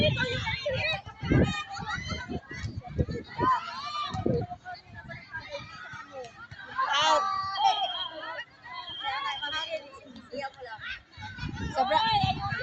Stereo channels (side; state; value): both; identical; correlation 1.00